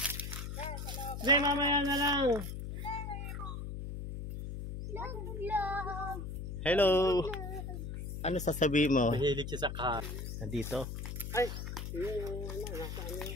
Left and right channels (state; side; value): noise; left; hum, 6 dB below the sound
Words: Hindi, mamaya na lang. Hello. Ano sasabihin mo? Mahilig siya sa car. Nandito. Ay, yung ano, nasa ano.